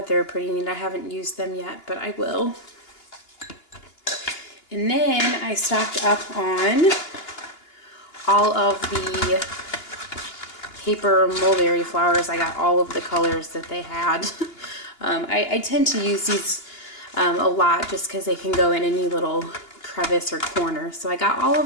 they were pretty neat. I haven't used them yet, but I will. And then I stocked up on all of the paper mulberry flowers. I got all of the colors that they had. I tend to use these a lot just because they can go in any little crevice or corner. So I got all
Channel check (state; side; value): late; right; 2.8 ms